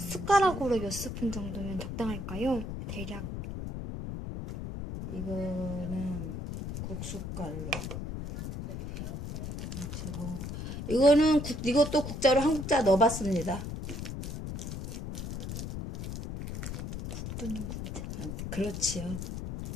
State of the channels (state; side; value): noise; left; rumble, 6 dB below the sound